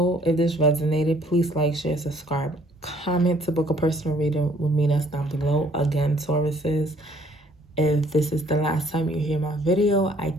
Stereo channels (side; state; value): both; normal; correlation 0.60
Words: if this resonated, please like, share, subscribe, comment to book a personal reading with me. That's down below. Again, Tauruses, if this is the last time you hear my video, I